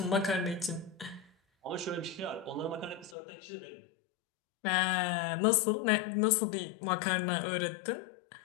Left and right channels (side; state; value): right; drops out; at 3.2 s